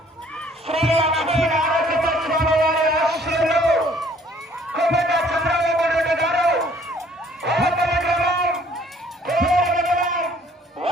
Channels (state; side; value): normal; both; correlation 0.58